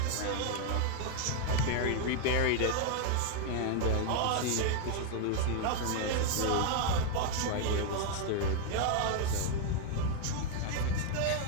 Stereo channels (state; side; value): different; both; correlation 0.00